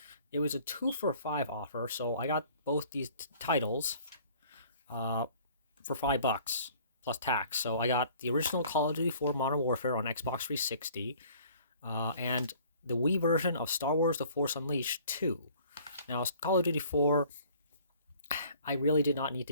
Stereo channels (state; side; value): inverted; both; correlation -0.53